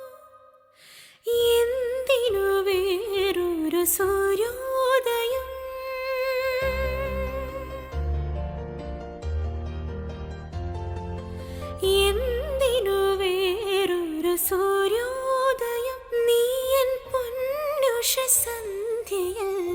എന്തിനു വേറൊരു സൂര്യോദയം? എന്തിനു വേറൊരു സൂര്യോദയം? നീ എൻ പൊന്നുഷ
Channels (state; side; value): identical; both; correlation 1.00